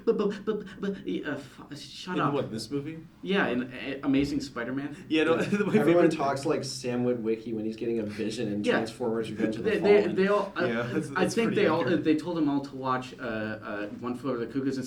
shut in up. what, this movie? Yeah, in Amazing Spider-Man. Yeah, no, my Everyone favorite- talks like Sam Witwicky when he's getting a vision in Yeah. Transformers: Revenge of the They Fallen. all. Yeah, I that's think pretty they all. accurate. They told them all to watch One Flew Over the Cuckoo's and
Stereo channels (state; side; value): identical; both; correlation 1.00